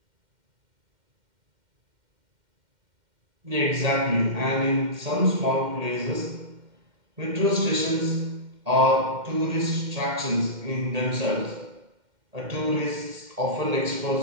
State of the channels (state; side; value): late; left; 2.1 ms